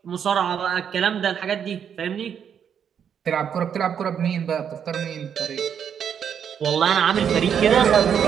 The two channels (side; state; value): left; quieter; 8.1 dB